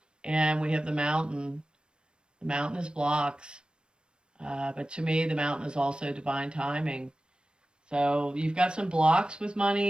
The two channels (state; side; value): late; left; 0.054 ms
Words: And we have the mountain. The mountain is blocks. But to me, the mountain is also divine timing. So you've got some blocks with